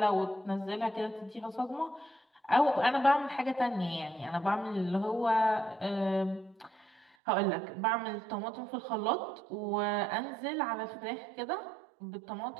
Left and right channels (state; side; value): drops out; left; at 7.1 s